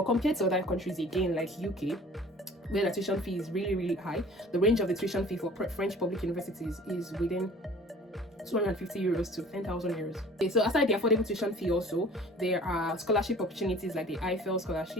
compared to other countries, again, like UK, where the tuition fee is really high, the range of the tuition fee for French public universities is within 250 euros to 10,000 euros. Okay, so aside the affordable tuition fee, also there are scholarship opportunities like the Eiffel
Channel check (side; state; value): both; normal; correlation 0.47